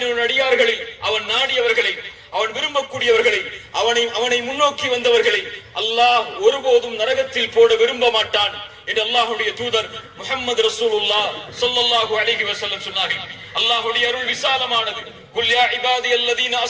அடியார்களில் அவன் நாடியவர்களை, அவன் விரும்பக்கூடியவர்களை, அவனை முன்னோக்கி வந்தவர்களை அல்லாஹ் ஒருபோதும் நரகத்தில் போட விரும்ப மாட்டான் என்று அல்லாஹ்வுடைய தூதர் முஹம்மது ரசூலுல்லாஹ் ஸல்லல்லாஹு அலைஹி வஸல்லம் சொன்னார்கள். அல்லாஹ்வுடைய அருள் விசாலமானது. குல் யா இபாதியல்லதீன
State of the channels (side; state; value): both; identical; correlation 1.00